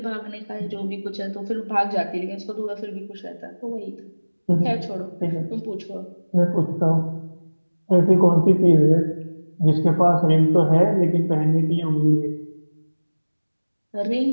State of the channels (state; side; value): inverted; both; correlation -1.00